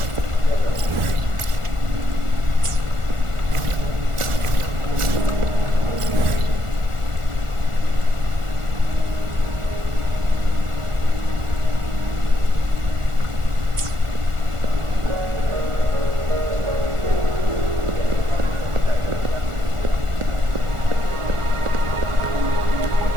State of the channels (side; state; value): left; late; 1.4 ms